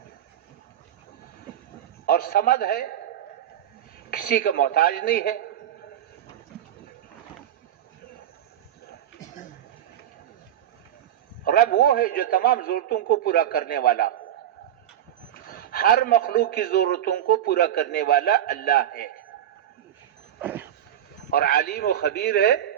اور سمد ہے، کسی کا محتاج نہیں ہے۔ رب وہ ہے جو تمام ضرورتوں کو پورا کرنے والا ہو، ہر مخلوق کی ضرورتوں کو پورا کرنے والا اللہ ہے، اور علیم و خبیر ہے،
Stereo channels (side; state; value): left; quieter; 11.1 dB